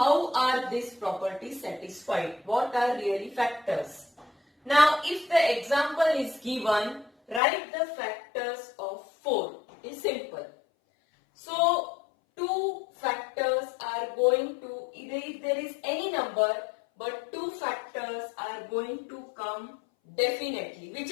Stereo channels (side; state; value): right; drops out; at 7.4 s